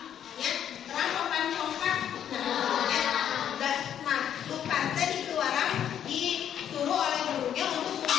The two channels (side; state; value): right; quieter; 9.6 dB